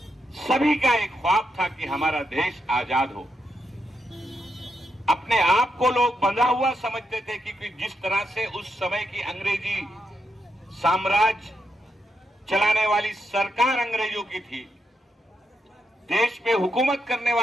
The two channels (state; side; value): normal; both; correlation 0.83